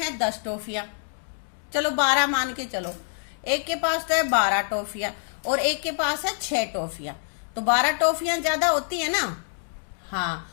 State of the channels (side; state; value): right; silent; digital silence